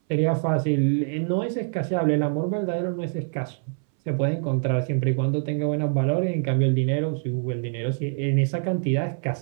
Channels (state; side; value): silent; left; 62 dB below the other